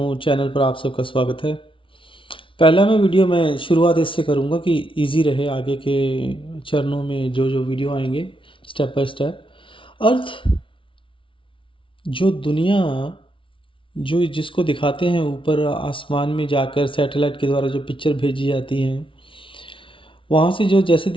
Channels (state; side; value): late; right; 0.25 ms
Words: चैनल पर आप सबका स्वागत है। पहला मैं वीडियो मैं शुरुआत इससे करूँगा कि इजी रहे आगे के चरणों में जो जो वीडियो आएंगे स्टेप बाय स्टेप। अर्थ, जो दुनिया, जो जिसको दिखाते हैं ऊपर आसमान में जाकर सैटेलाइट के द्वारा जो पिक्चर भेजी जाती हैं, वहाँ से जो जैसे